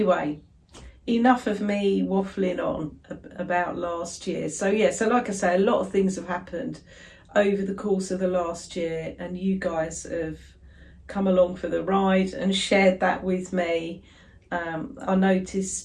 enough of me waffling on about last year. So yeah, so like I say, a lot of things have happened over the course of the last year, and you guys have come along for the ride and shared that with me. I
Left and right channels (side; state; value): both; identical; correlation 1.00